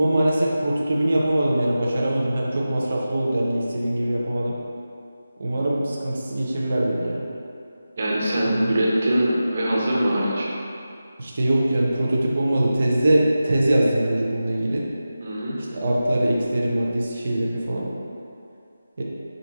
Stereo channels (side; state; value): both; inverted; correlation -0.94